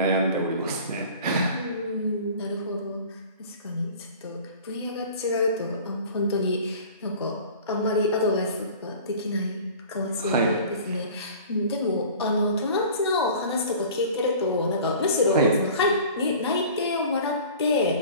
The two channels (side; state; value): both; inverted; correlation -0.43